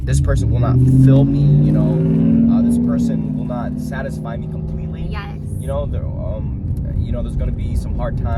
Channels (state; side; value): identical; both; correlation 1.00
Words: this person will not fill me, you know, this person will not satisfy me completely. Yes. You know, there's going to be some hard